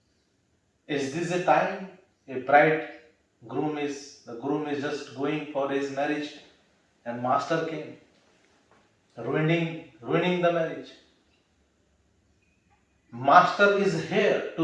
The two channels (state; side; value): identical; both; correlation 1.00